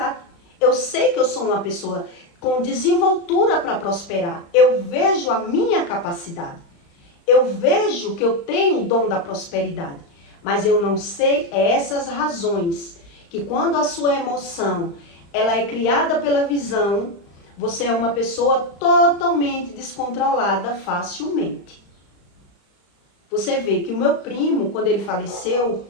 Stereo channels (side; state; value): right; late; 35 ms